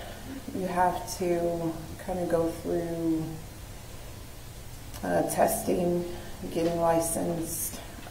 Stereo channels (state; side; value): identical; both; correlation 1.00